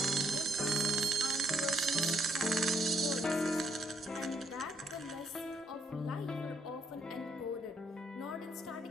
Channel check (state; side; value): normal; both; correlation 0.72